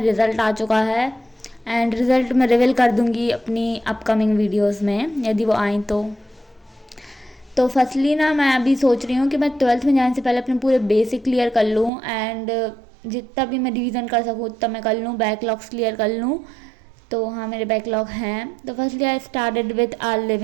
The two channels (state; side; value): drops out; left; at 11.9 s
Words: रिज़ल्ट आ चुका है एंड रिज़ल्ट मैं रिवील कर दूँगी अपनी अपकमिंग वीडियोज़ में यदि वो आएँ तो फर्स्टली ना मैं अभी सोच रही हूँ कि मैं 12th में जाने से पहले अपने पूरे बेसिक क्लियर कर लूँ एंड जितना भी मैं रिवीजन कर सकूँ उतना मैं कर लूँ, बैकलॉग्स क्लियर कर लूँ। तो हाँ, मेरे बैकलॉग हैं। तो firstly I started with a